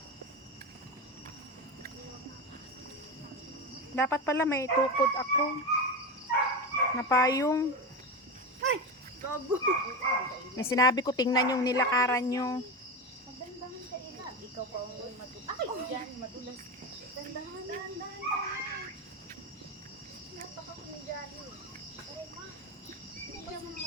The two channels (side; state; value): both; normal; correlation 0.19